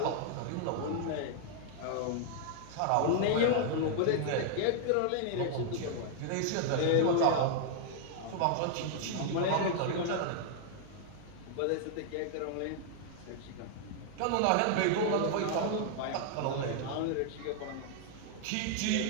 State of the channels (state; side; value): different; both; correlation -0.01